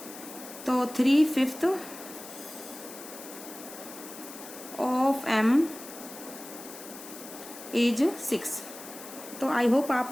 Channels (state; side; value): noise; left; hiss, 14 dB below the sound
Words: तो 3/5 ऑफ m इज 6। तो आई होप